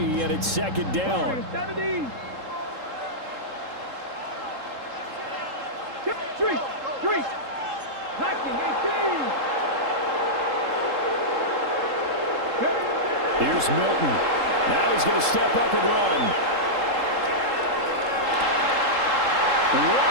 and it's second down. 70. Three. Knocking 18. Here's Milton. Now he's going to step up and run.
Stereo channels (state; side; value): late; left; 3.7 ms